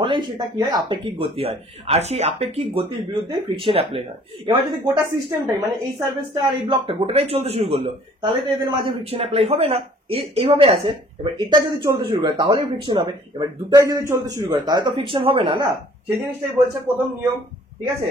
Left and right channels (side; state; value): both; normal; correlation 0.56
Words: সেটা কি হয়? আপেক্ষিক গতি হয়। আর সেই আপেক্ষিক গতির বিরুদ্ধে ফ্রিকশন অ্যাপ্লাই হয়। এবার যদি গোটা সিস্টেমটাই, মানে এই সার্ফেসটা আর এই ব্লকটা গোটাটাই চলতে শুরু করলো, তাহলে তো এদের মাঝে ফ্রিকশন অ্যাপ্লাই হবে না। এইভাবে আছে। এবার এটা যদি চলতে শুরু করে তাহলেই ফ্রিকশন হবে। এবার দুটাই যদি চলতে শুরু করে তাহলে তো ফ্রিকশন হবে না, না? সেই জিনিসটাই বলছে প্রথম নিয়ম। ঠিক আছে?